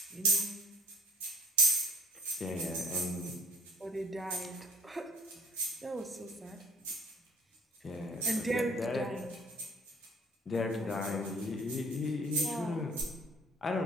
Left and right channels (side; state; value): both; normal; correlation 0.51